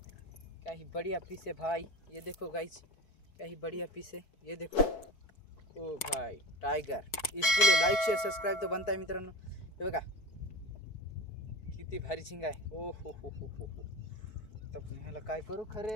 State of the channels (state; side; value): late; right; 4.6 ms